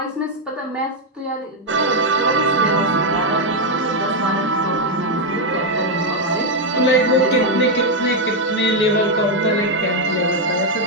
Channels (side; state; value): both; normal; correlation 0.02